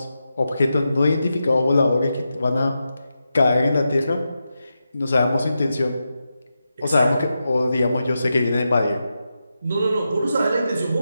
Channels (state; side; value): inverted; both; correlation -0.89